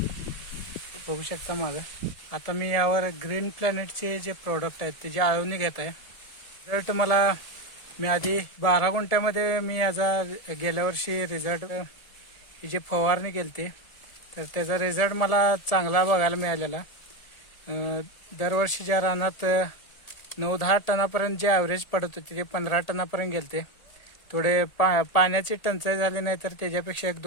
बघू शकता मागं. आता मी यावर ग्रीन प्लॅनेटचे जे प्रोडक्ट आहेत त्याची आळवणी घेत आहे. रिझल्ट मला, मी आधी 12 गुंठ्यामध्ये मी याचा गेल्या वर्षी रिझल्ट ही जी फवारणी केली होती तर त्याचा रिझल्ट मला चांगला बघायला मिळालेला. दरवर्षीच्या रानात 9-10 टनापर्यंत जे ॲव्हरेज पडत होते ते 15 टनापर्यंत गेले. थोडे पाण्याची टंचाई झाली नाही तर त्याच्यापेक्षा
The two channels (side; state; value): right; late; 1.7 ms